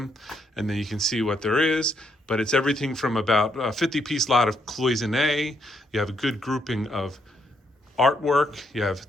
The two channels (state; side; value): normal; both; correlation 0.75